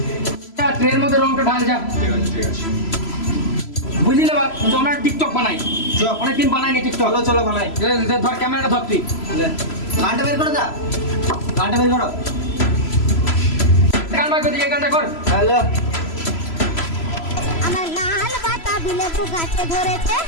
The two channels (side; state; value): right; late; 3.0 ms